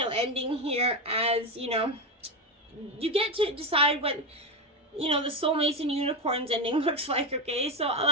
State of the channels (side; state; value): both; normal; correlation 0.13